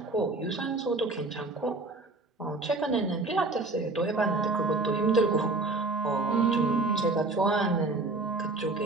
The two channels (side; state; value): left; quieter; 3.2 dB